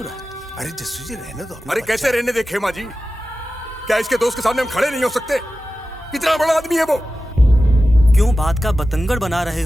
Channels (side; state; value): both; normal; correlation 0.94